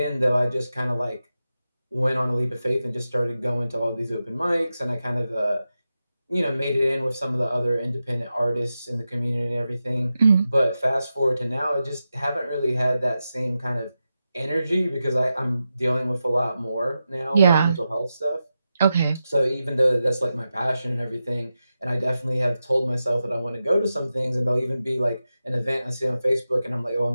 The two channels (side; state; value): both; inverted; correlation -0.91